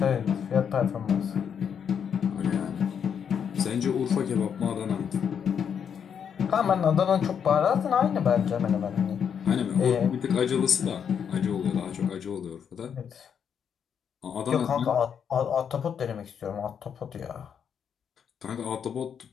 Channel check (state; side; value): quieter; right; 7.7 dB